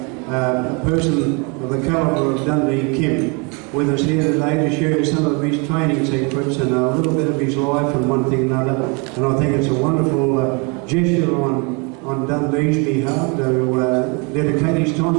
person of the calibre of Dundee Kim with us here today to share some of his training secrets and a little bit of his life and one thing and another. And I think it's a wonderful gesture on Dundee's behalf to dedicate his time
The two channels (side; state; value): left; quieter; 31.9 dB